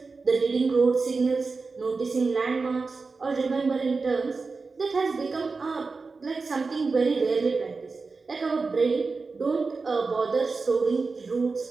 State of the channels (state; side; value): quieter; left; 4.2 dB